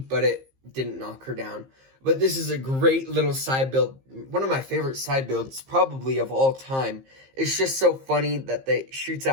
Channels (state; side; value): late; left; 15 ms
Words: but it didn't knock her down. But this is a great little side build. One of my favorite side builds, probably of all time. It's just so funny that they shoots